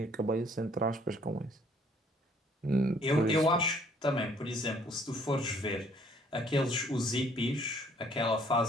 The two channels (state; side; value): normal; both; correlation 0.61